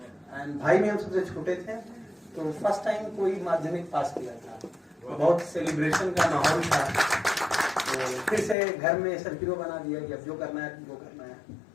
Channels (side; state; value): right; drops out; at 8.6 s